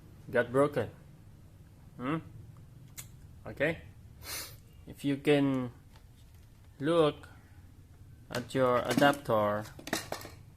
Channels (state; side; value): identical; both; correlation 1.00